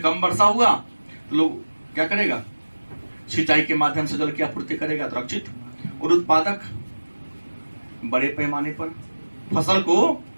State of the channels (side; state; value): both; inverted; correlation -1.00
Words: वर्षा हुआ तो लोग क्या करेगा? सिंचाई के माध्यम से जल की आपूर्ति करेगा, तो रक्षित। और उत्पादक, बड़े पैमाने पर फसल को